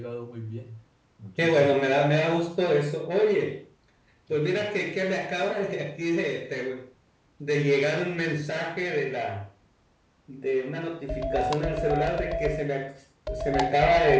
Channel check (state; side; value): identical; both; correlation 1.00